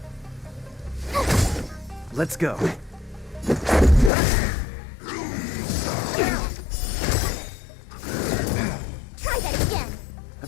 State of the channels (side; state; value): right; drops out; at 4.1 s